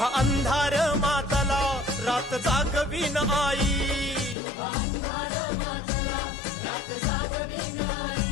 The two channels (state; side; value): drops out; right; at 4.4 s